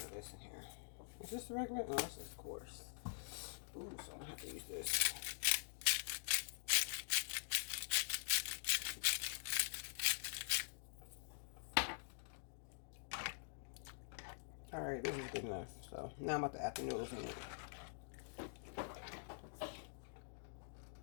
of this in here. Is this the regular? No, this is coarse. Ooh, so I'm gonna have to use this. All right, this is good enough. So now I'm about to add the noodles in it.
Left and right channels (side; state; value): right; silent; digital silence